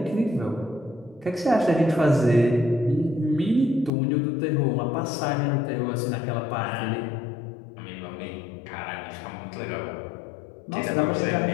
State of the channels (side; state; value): right; drops out; at 3.9 s